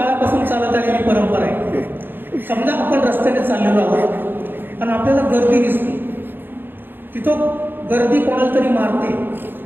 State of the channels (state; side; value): late; left; 0.098 ms